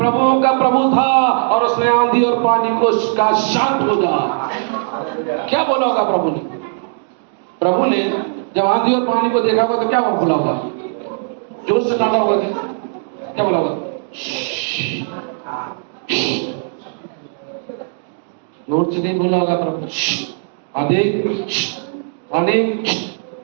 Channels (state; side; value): silent; left; digital silence